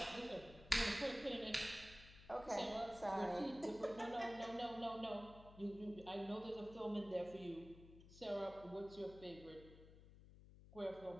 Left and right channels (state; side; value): noise; left; hum, 18 dB below the sound